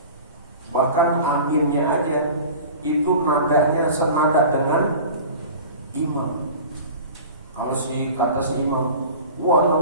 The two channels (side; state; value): both; inverted; correlation -0.38